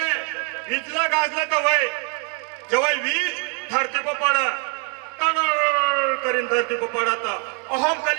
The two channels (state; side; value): quieter; left; 34.6 dB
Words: विजलं गाजलं तर वय जेव्हा वीज धरती पर पड करीन धरती पर पडत अहम